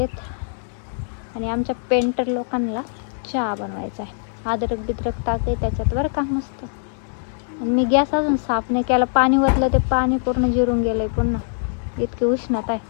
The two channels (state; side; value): silent; right; digital silence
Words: आणि आमच्या पेंटर लोकांना चहा बनवायचा आहे. अद्रक बिद्रक टाकाय त्याच्यात बरं का मस्त. मी गॅस अजून साफ नाही केला. पाणी ओतलं ते पाणी पूर्ण जिरून गेलंय पुन्हा. इतकी उष्णता